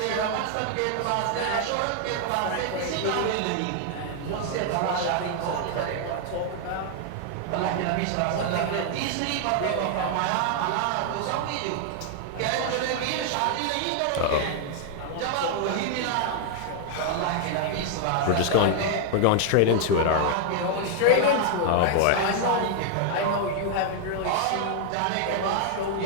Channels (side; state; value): both; different; correlation 0.00